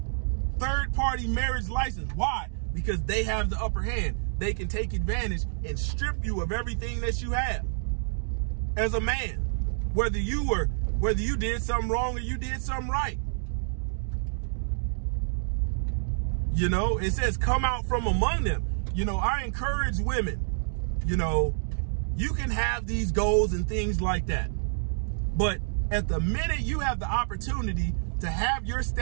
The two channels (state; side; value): silent; left; digital silence